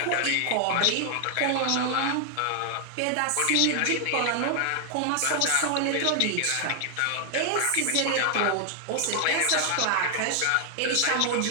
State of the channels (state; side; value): different; both; correlation 0.00